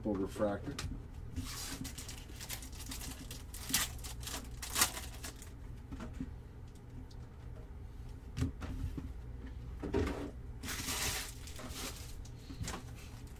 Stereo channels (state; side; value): identical; both; correlation 1.00